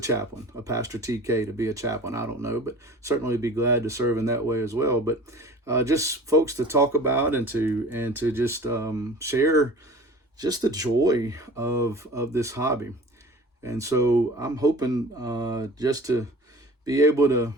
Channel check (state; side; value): normal; both; correlation 0.42